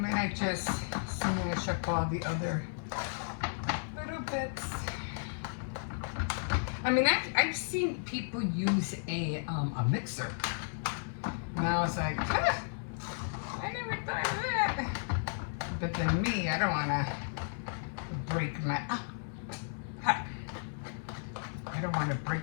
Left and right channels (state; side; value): silent; right; 55 dB below the other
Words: I just smash up all the other little bits. I mean, I've seen people use a mixer. And I was like, huh, I never thought of that. But then me, I don't want to break my, I don't want to